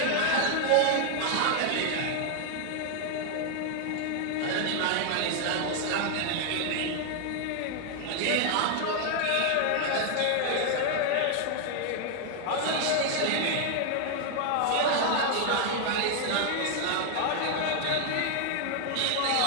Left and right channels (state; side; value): different; both; correlation 0.00